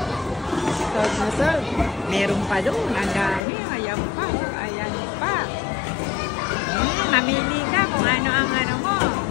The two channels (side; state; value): right; drops out; at 3.4 s